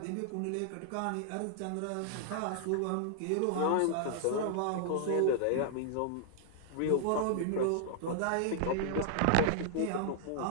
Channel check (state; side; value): different; both; correlation -0.01